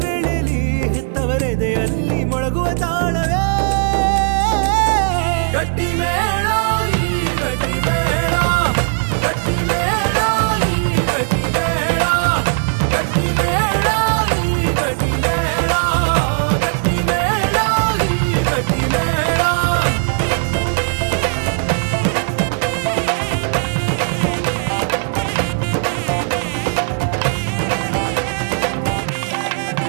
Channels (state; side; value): silent; left; 68 dB below the other